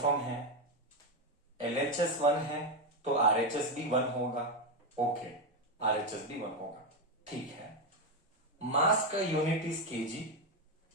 है, LHS 1 है तो RHS भी 1 होगा। ओके, RHS भी 1 होगा, ठीक है। मास का unit is kg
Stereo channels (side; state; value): both; normal; correlation 0.08